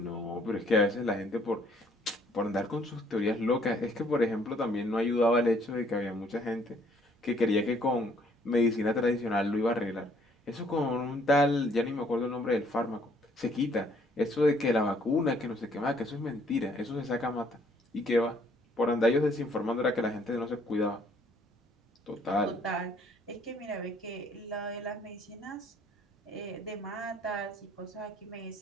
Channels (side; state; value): both; normal; correlation 0.63